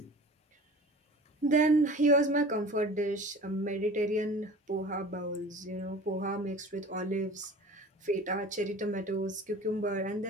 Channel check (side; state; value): both; normal; correlation 0.41